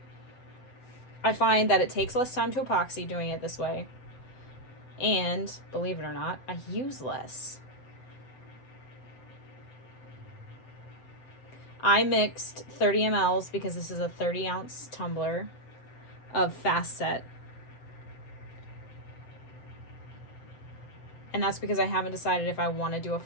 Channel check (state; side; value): late; right; 7.9 ms